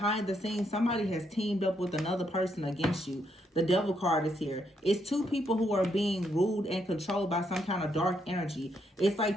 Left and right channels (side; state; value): both; normal; correlation 0.76